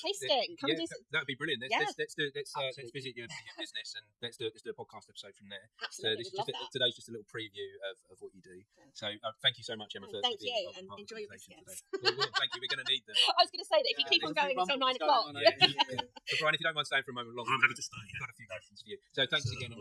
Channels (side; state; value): both; identical; correlation 1.00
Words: Come and do some... That'd be brilliant. Let's visit your business and let's do a podcast episode from there. Absolutely, so today's just a little preview of what you do. So thank you so much, Emma. Thank you, and enjoy your biscuits. Well, thank you. We're going to need them. I was going to say that if you keep on going until 9 o'clock. So Brian, if you don't mind staying for a moment longer, I'm happy to stay. I've got a few questions for you. So thanks again,